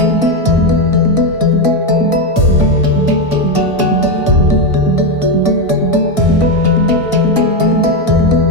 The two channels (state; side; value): late; right; 1.5 ms